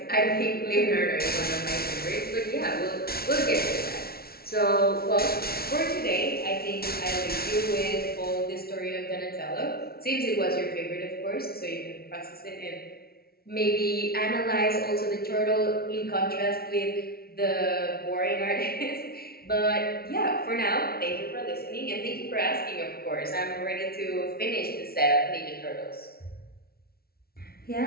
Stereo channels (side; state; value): right; late; 0.44 ms